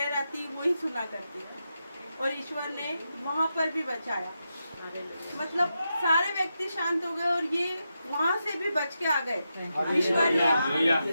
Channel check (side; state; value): both; inverted; correlation -0.87